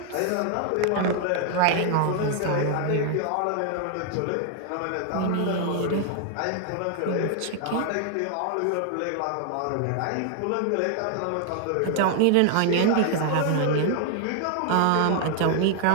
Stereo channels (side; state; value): both; different; correlation 0.00